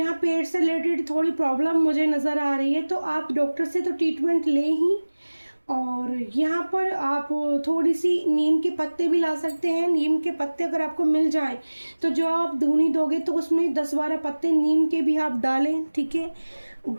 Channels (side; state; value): both; inverted; correlation -1.00